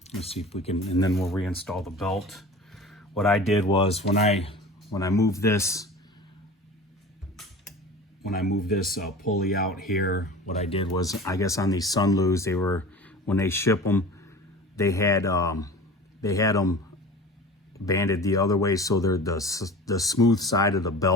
Let's see if we can, and then we'll reinstall the belt. What I did was when I moved this, pulley out here, what I did was, I guess on these Sunloos, they were, when they ship them, they had them banded the other way, so they're the smooth side of the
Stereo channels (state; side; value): normal; both; correlation 0.37